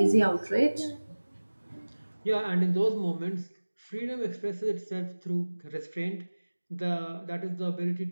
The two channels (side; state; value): both; inverted; correlation -1.00